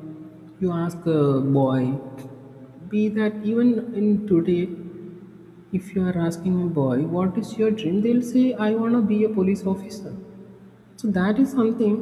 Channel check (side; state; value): both; identical; correlation 1.00